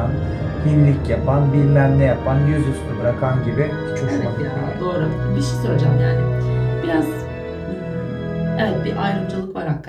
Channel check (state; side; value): identical; both; correlation 1.00